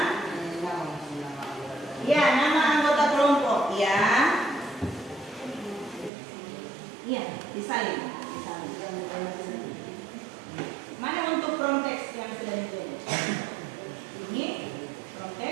Ya, nama anggota kelompok. Ya. Iya, disalin. Mana untuk prompt text yang sudah dibuat? Ini prompt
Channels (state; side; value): drops out; left; at 6.1 s